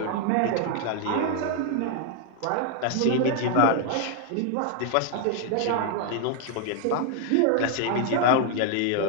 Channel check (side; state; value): both; different; correlation 0.00